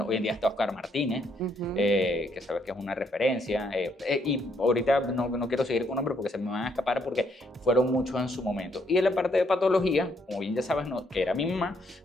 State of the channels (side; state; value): both; normal; correlation 0.72